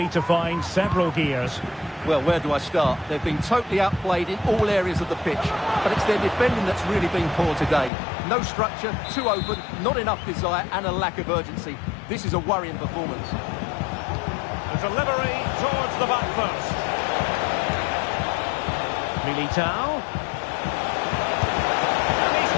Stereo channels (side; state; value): right; drops out; at 7.9 s